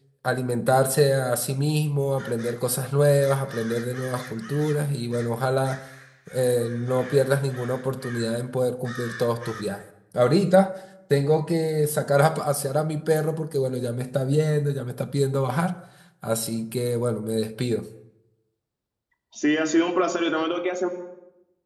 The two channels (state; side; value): identical; both; correlation 1.00